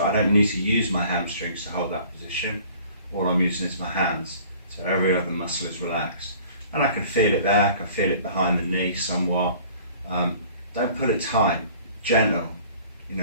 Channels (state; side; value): inverted; both; correlation -0.50